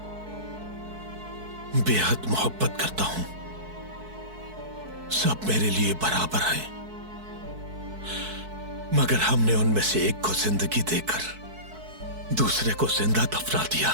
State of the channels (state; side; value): late; left; 4.6 ms